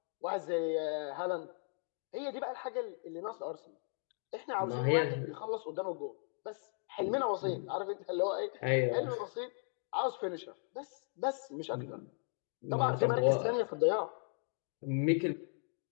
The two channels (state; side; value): silent; right; 53 dB below the other